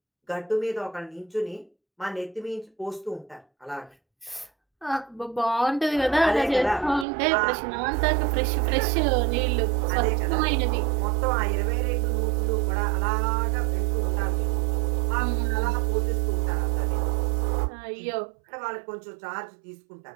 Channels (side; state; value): left; drops out; at 7.1 s